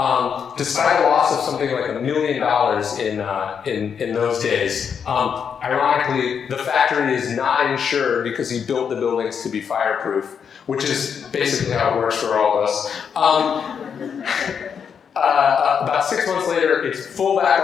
despite a loss of something like $1 million in those days. Ironically, the factory is not insured because he built the buildings to be fireproof, which is basically how it works for all of us. About 6 months later, it's full back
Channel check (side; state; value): right; quieter; 7.1 dB